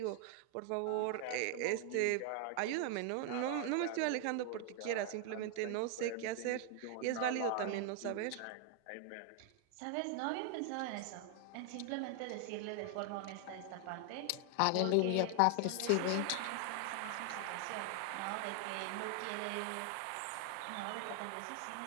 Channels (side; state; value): both; different; correlation 0.00